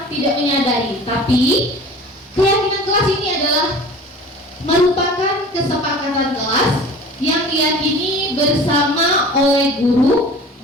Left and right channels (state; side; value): normal; both; correlation 0.42